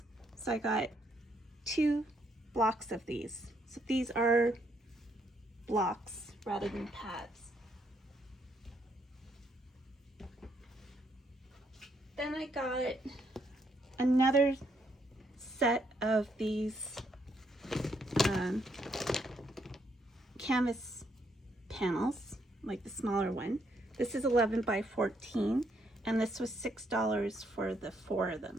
So I got 2 blocks of these. So these are blocks rather than pads. Then I got another set of these canvas panels, like the smaller one. This is 11 by 14, and this was $6 for the 4 of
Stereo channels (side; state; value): both; normal; correlation 0.73